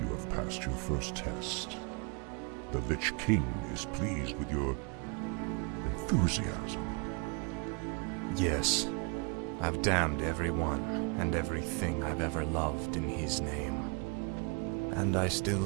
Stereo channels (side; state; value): left; quieter; 31.3 dB